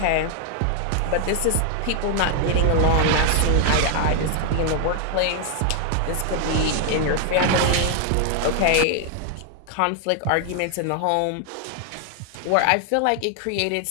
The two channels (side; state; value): both; different; correlation 0.00